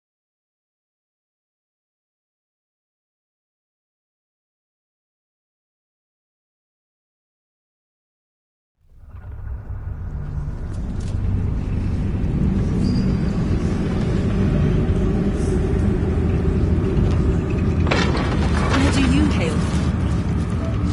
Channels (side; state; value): both; identical; correlation 1.00